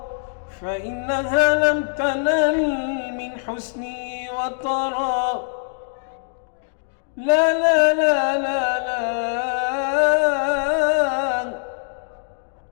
فإنها لم تنل من حسنه وطرا. لا لا لا لا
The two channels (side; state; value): right; silent; digital silence